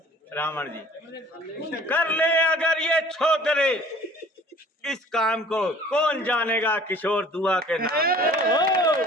रावण जी, कर ले अगर ये छोकरे इस काम को, कौन जानेगा किशोर दुआ के नाम।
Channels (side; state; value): both; normal; correlation 0.50